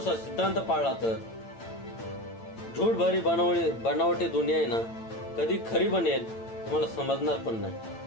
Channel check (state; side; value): late; right; 8.9 ms